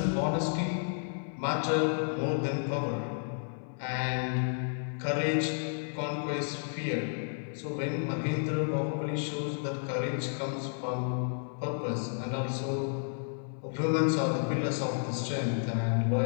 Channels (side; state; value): right; silent; 57 dB below the other